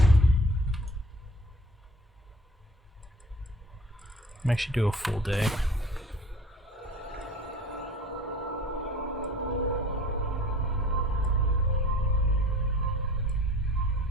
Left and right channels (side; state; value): both; normal; correlation 0.46